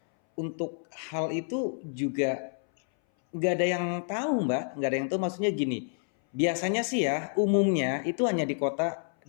untuk hal itu juga nggak ada yang tahu Mbak, nggak ada yang tahu, maksudnya gini, biasanya sih ya umumnya itu hanya di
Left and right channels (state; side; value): silent; right; 59 dB below the other